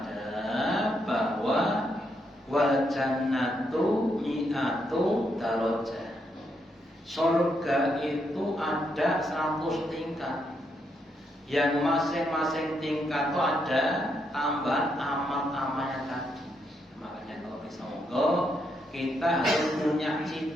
bahwa wal jannatu mi'atu darajah. Surga itu ada 100 tingkat. Yang masing-masing tingkat itu ada tambahan amal-amalnya tadi. Makanya kalau bisa monggo kita harus punya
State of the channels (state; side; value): normal; both; correlation 0.79